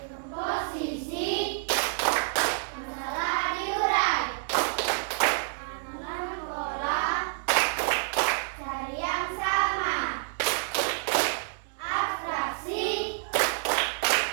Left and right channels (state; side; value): silent; left; digital silence